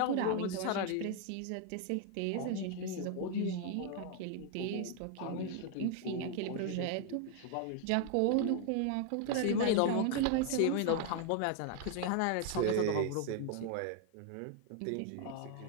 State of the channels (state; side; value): different; both; correlation 0.00